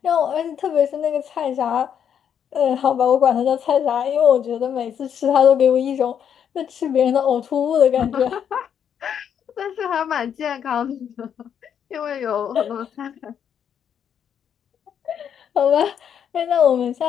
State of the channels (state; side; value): quieter; right; 8.5 dB